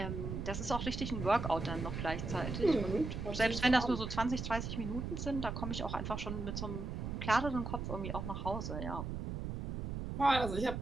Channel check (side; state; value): right; noise; rumble, 4 dB below the sound